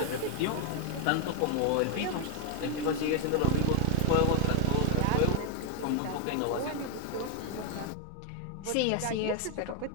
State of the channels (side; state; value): both; different; correlation 0.00